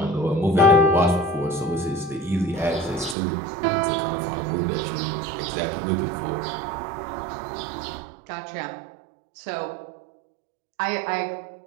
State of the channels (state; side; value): drops out; left; at 3.2 s